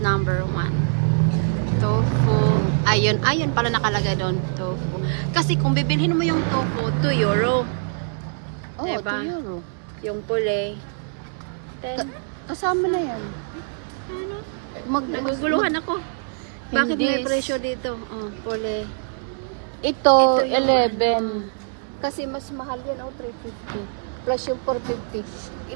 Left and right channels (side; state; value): left; silent; digital silence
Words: number 1. Tofu. Ayun pala nakalagay doon. Tofu. Kasi kung bibilhin mo yung tofu, 2 euro. Oo, diba? 2 euro. Yung puli. Kasama na yan. Ano? Naguguluhan ako. Bakit may presyo dito? Puli. Ito 11. Kasi mas mahal yan, 350. Plus yung 450.